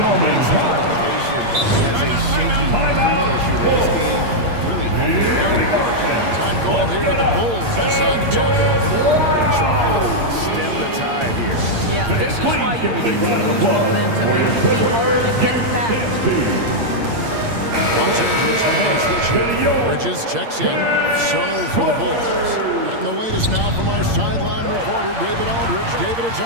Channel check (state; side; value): late; left; 8.7 ms